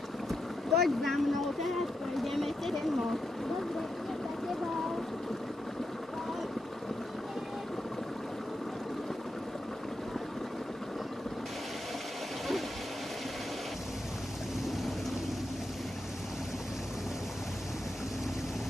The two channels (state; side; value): normal; both; correlation 0.85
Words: Poď za mnou, teraz prejdeme ten most. Dobre, idem za tebou.